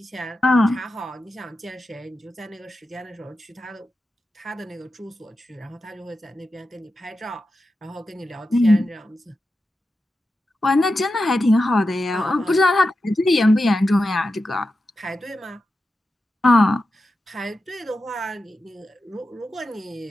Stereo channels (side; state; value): both; normal; correlation 0.90